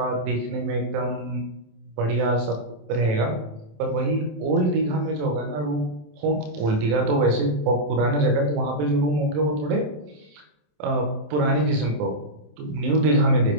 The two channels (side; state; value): left; late; 27 ms